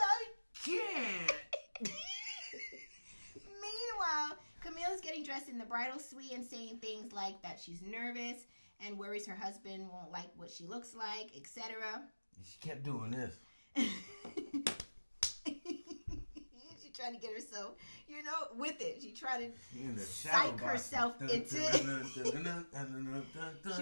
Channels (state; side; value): inverted; both; correlation -1.00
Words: can't. Meanwhile, Camille's getting dressed in the bridal suite and saying things like that she's nervous and worries her husband won't like what she looks like, etc. She kept doing this. She trying to get herself, with it. She tried In to the shadow psych box. herself into it. She